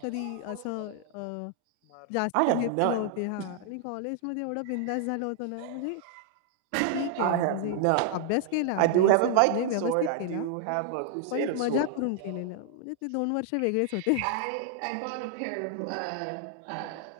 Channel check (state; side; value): different; both; correlation -0.01